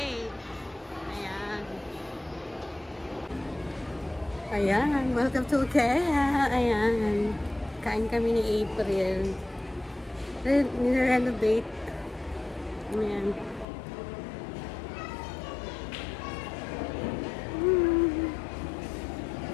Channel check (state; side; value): drops out; right; at 13.7 s